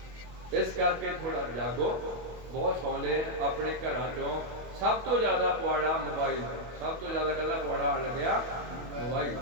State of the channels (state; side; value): late; left; 24 ms